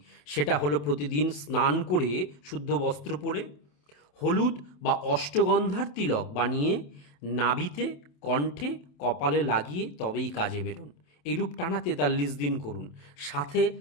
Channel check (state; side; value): late; right; 28 ms